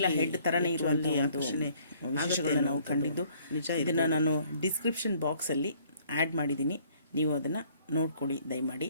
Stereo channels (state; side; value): inverted; both; correlation -0.60